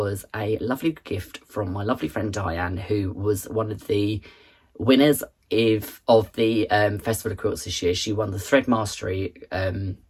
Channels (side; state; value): both; identical; correlation 1.00